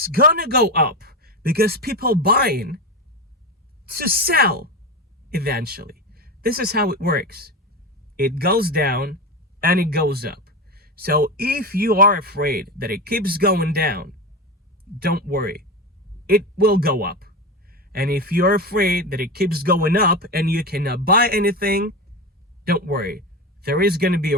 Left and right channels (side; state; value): both; normal; correlation 0.20